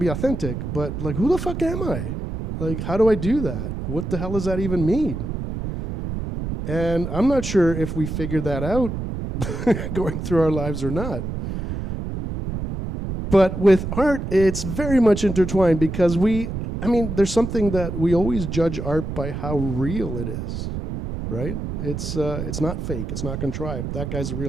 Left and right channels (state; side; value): noise; right; rumble, 5 dB below the sound